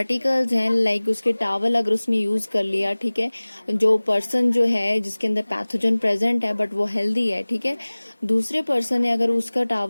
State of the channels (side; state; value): both; inverted; correlation -1.00